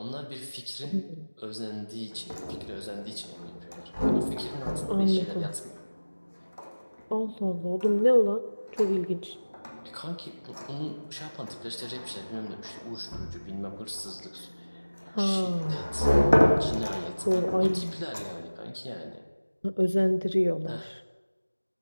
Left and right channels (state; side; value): inverted; both; correlation -1.00